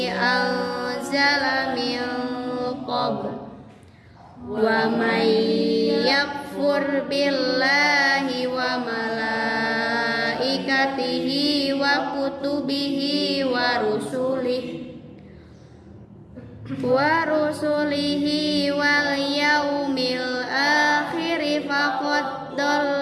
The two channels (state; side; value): identical; both; correlation 1.00